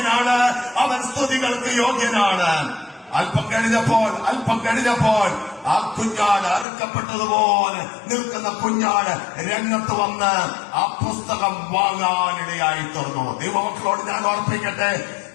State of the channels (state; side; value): drops out; right; at 6.7 s